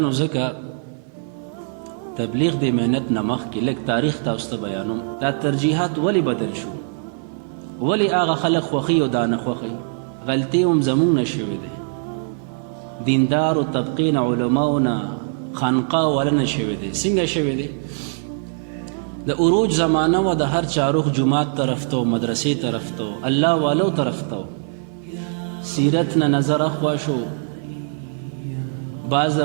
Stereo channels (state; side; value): silent; left; 56 dB below the other